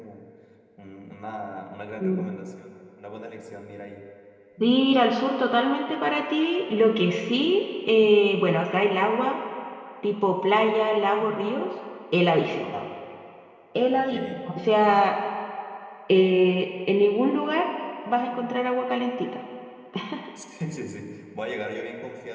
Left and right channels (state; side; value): identical; both; correlation 1.00